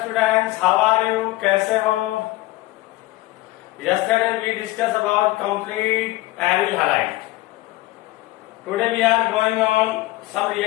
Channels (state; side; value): quieter; right; 18.8 dB